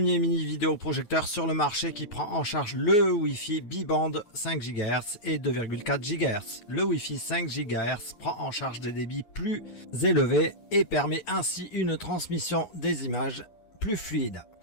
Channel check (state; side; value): late; right; 9.4 ms